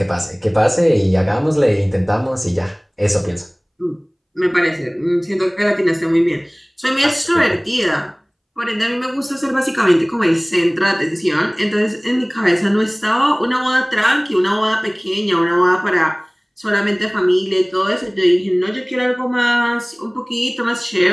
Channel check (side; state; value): both; identical; correlation 1.00